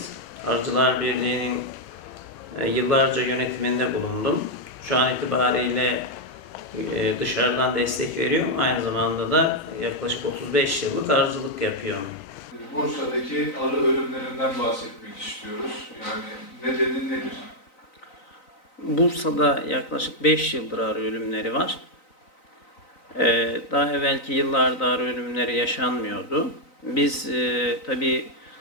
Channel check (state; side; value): late; right; 3.9 ms